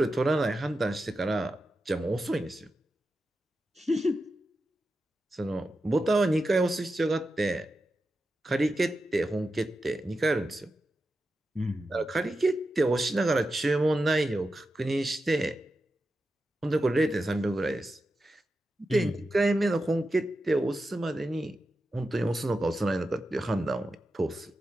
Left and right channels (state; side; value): normal; both; correlation 0.90